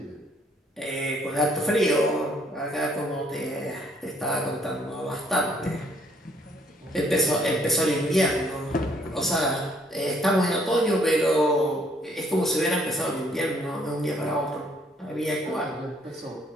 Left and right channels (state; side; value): normal; both; correlation 0.65